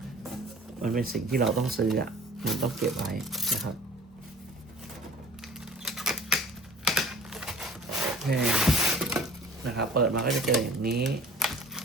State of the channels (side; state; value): both; normal; correlation 0.45